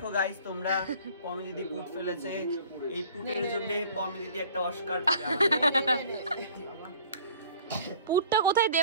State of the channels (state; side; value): inverted; both; correlation -0.50